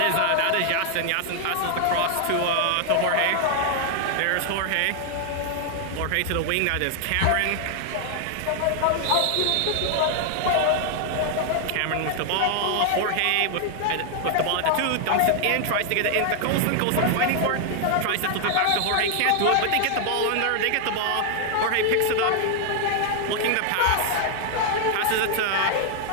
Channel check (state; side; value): different; both; correlation 0.00